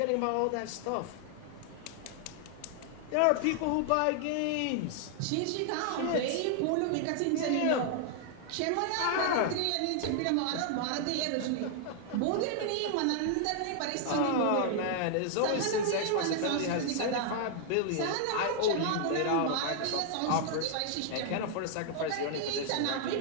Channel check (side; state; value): both; different; correlation 0.00